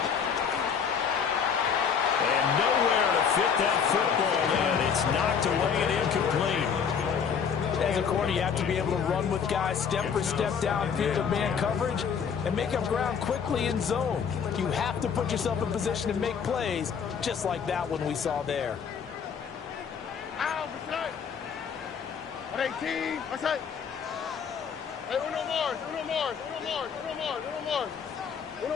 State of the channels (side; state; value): right; quieter; 6.8 dB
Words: And nowhere to fit that football in. It's knocked away and incomplete. As a corner, you have to be able to run with guys step for step downfield of man coverage and make up ground quickly in zone. You have to put yourself in position to make plays, just like that one we saw there. Ow, 18. What's that? Hey, uno more.